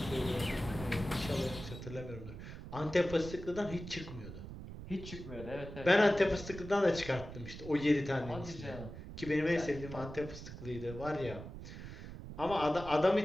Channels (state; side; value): noise; right; rumble, 11 dB below the sound